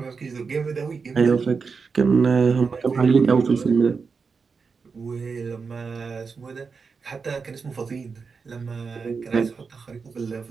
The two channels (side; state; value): left; quieter; 5.1 dB